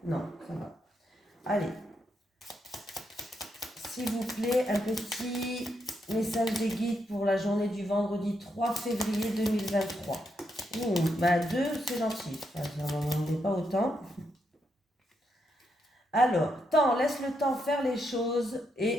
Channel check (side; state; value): both; normal; correlation 0.80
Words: Non, ça va. Allez. S'il vous plaît, un petit message des guides pour la journée du vendredi 3 février 2023. Ouh, 2, c'est gentil. Enfin, j'en demandais pas autant. Alors, laisse le temps faire les choses